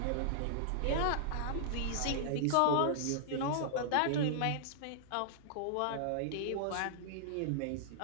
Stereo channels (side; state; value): both; different; correlation -0.01